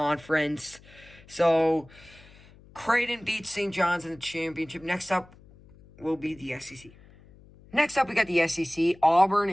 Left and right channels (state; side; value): noise; left; hum, 24 dB below the sound